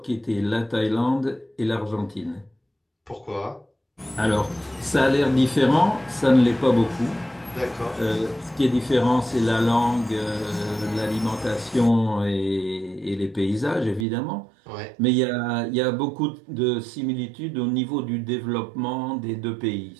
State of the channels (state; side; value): drops out; left; at 14.1 s